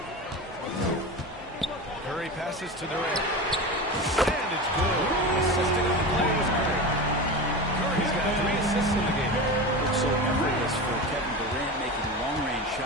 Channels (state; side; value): normal; both; correlation 0.26